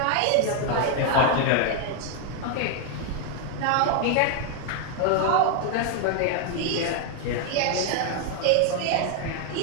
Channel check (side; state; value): both; different; correlation 0.00